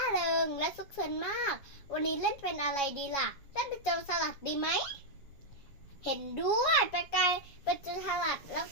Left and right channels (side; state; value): right; late; 7.2 ms